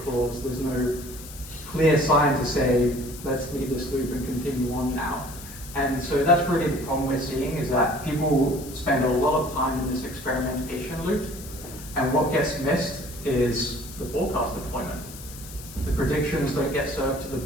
clause, there's no clear sign to say, let's leave this loop and continue on now. And so that's really the problem we're seeing, is that people spend a lot of time in this experimentation loop, and what gets missed is the forecast deployment. The predictions don't get served to the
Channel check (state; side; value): noise; left; hiss, 15 dB below the sound